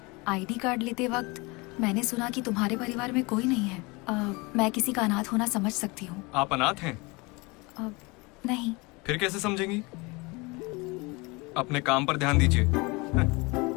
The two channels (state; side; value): quieter; right; 26.1 dB